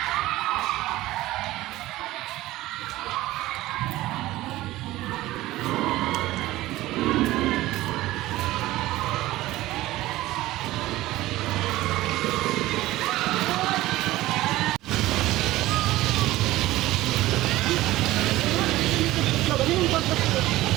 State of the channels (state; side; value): quieter; left; 16.9 dB